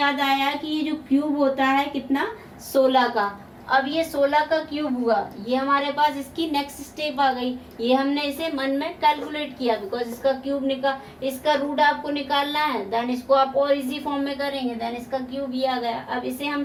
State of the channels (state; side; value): identical; both; correlation 1.00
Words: आया कि ये जो क्यूब होता है कितना 16 का। अब ये 16 का क्यूब हुआ, ये हमारे पास इसकी नेक्स्ट स्टेप आ गई। ये हमने इसे मन में कैलकुलेट किया बिकॉज इसका क्यूब इसका रूट आपको निकालना है। देन इसको आप और इजी फॉर्म में करेंगे, देन इसका क्यूब ये आ गया। अब इसे हम